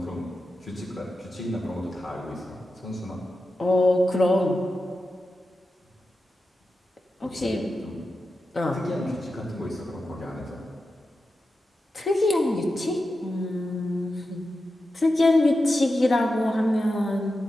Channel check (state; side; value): normal; both; correlation 0.91